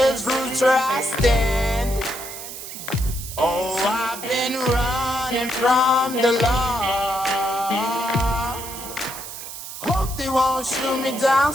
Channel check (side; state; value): right; noise; hiss, 10 dB below the sound